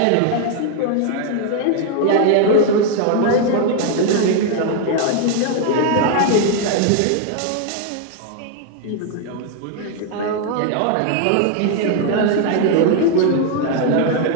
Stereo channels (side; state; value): both; different; correlation 0.00